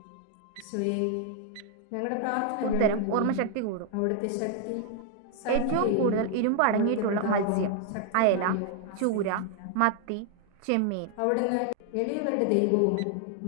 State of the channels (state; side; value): different; both; correlation 0.00